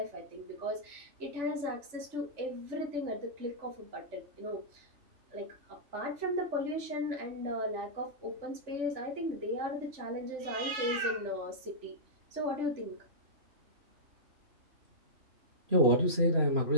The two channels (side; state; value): left; late; 3.4 ms